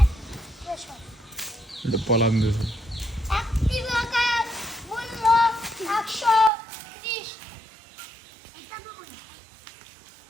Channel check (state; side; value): drops out; left; at 6.5 s